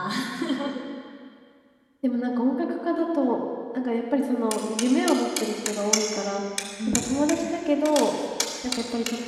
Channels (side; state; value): both; identical; correlation 1.00